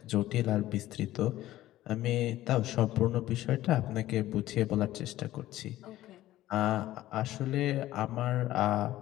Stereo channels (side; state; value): right; quieter; 14.9 dB